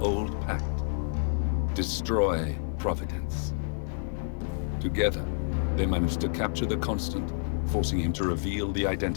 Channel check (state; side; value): silent; right; digital silence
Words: old pact. Destroy Providence. Together, they manage to capture the Constant, forcing him to reveal the